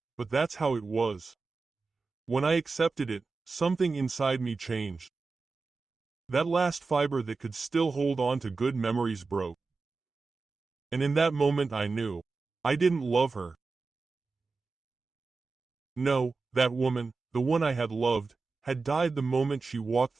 but that's how it was. When I accepted it, something inside me changed. That last fiber that could still hold on to good memories broke. And in that moment I knew. I didn't love her. No, that woman, the one I had loved, had died the moment she walked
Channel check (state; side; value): quieter; left; 4.1 dB